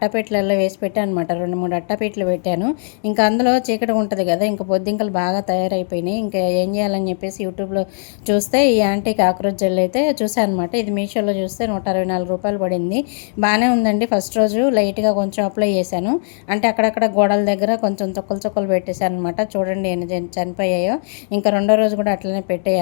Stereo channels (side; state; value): right; silent; digital silence